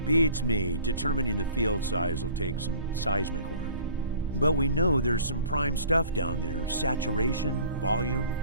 Beats me. Determining the field size will take some seismic work. But we know there's some prime stuff down there. Saturation, volume,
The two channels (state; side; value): inverted; both; correlation -0.50